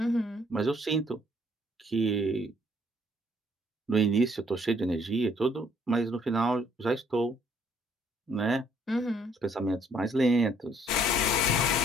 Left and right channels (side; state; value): both; normal; correlation 0.64